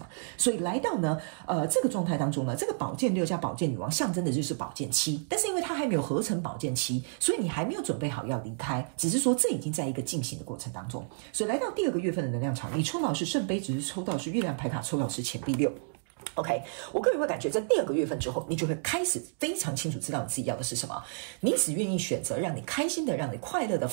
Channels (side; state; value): left; silent; digital silence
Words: 所以来到呢这个状态当中呢，这个宝剑六加宝剑女王象征的就是宝剑七，但是因为它还没有合成宝剑七，所以你还没有准备好要离开，只是说这已经在一个进行的过程当中。所以来到第2个月份的能量场，你抽到是圣杯，只是抽到是月亮牌卡，抽到是钱币六。OK， 我个人会感觉在第2个月份之后，你就会开始非常清楚知道你自己要的是什么，你只愿意选择让你开心的、让你快乐的、